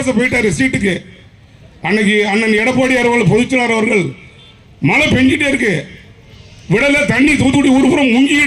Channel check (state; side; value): identical; both; correlation 1.00